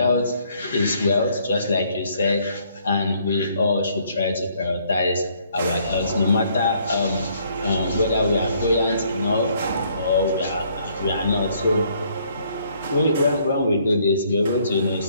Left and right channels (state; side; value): inverted; both; correlation -0.66